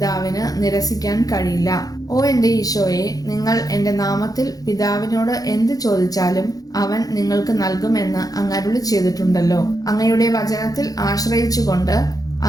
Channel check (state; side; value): late; right; 0.18 ms